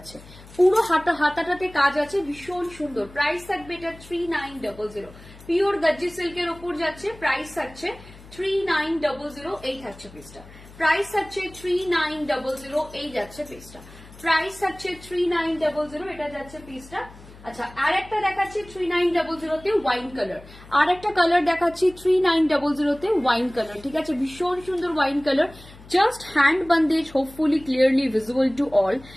পুরো হাতাটাতে কাজ আছে, ভীষণ সুন্দর। প্রাইস থাকবে এটা 3900, পিওর গজ্জি সিল্কের ওপর যাচ্ছে, প্রাইস থাকছে 3900। এই থাকছে পিসটা, প্রাইস থাকছে 3900। এই যাচ্ছে পিসটা, প্রাইস থাকছে 3900। এটা যাচ্ছে পিসটা। আচ্ছা, আর একটা দেখাচ্ছি 3900 তে ওয়াইন কালার, আর একটা কালার দেখাচ্ছি 3900 তে ওয়াইন কালার, ঠিক আছে? ভীষণ সুন্দর wine colour, just hand Bandhej, hopefully clearly visible to all,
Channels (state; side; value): noise; left; hum, 20 dB below the sound